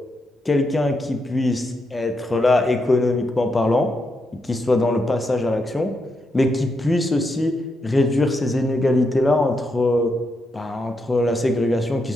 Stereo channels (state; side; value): normal; both; correlation 0.82